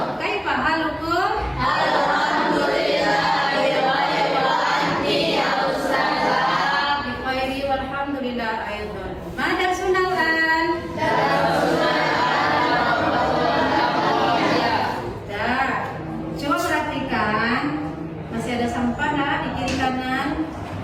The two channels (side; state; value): both; identical; correlation 1.00